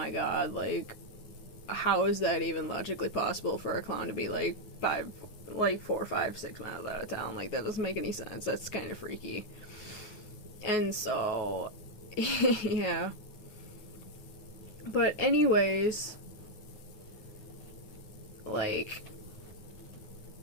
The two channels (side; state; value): right; late; 9.4 ms